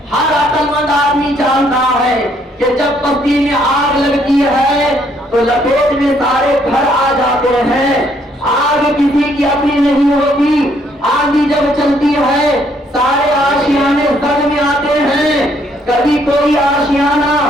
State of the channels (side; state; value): both; normal; correlation 0.68